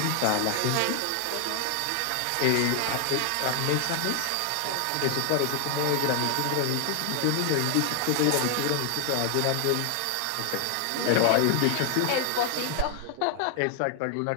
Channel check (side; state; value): both; different; correlation 0.00